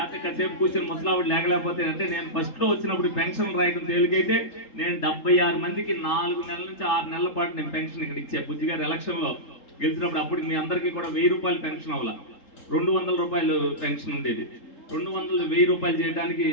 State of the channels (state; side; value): late; right; 3.7 ms